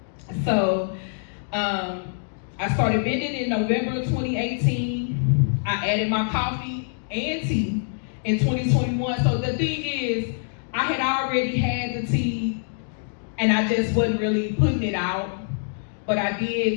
So I started vending in November of 2018. I added my coffee and tea in 2021. So the thing is, I had already had the tea and I just wasn't really putting it out. But I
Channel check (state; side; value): silent; right; digital silence